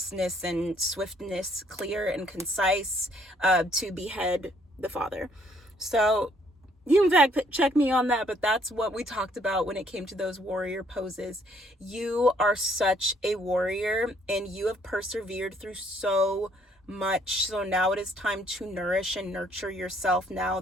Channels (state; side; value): normal; both; correlation 0.66